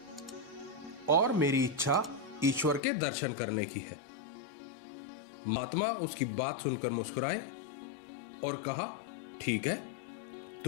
और मेरी इच्छा ईश्वर के दर्शन करने की है। महात्मा उसकी बात सुनकर मुस्कुराए और कहा, ठीक है,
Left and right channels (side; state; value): right; drops out; at 2.8 s